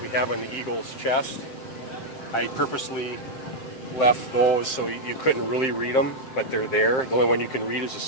have on the eagle's chest, I purposely left those so you couldn't really read them, but they're there. The only one you can read is the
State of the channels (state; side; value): late; right; 7.6 ms